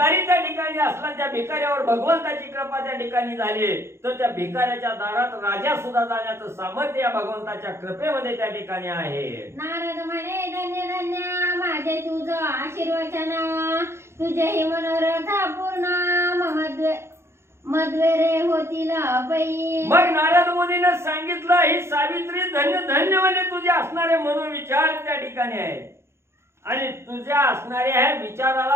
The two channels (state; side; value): late; left; 0.13 ms